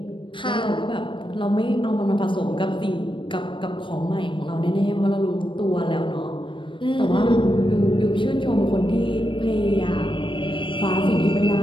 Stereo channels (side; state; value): right; late; 0.24 ms